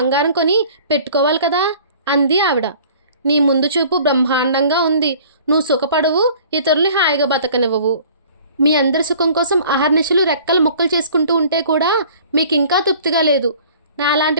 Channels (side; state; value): both; inverted; correlation -0.49